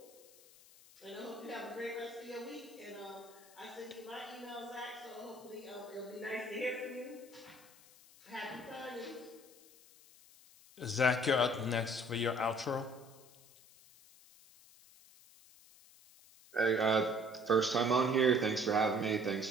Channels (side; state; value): left; noise; hiss, 23 dB below the sound